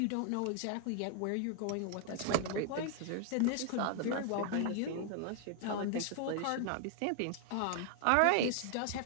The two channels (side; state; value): both; different; correlation 0.00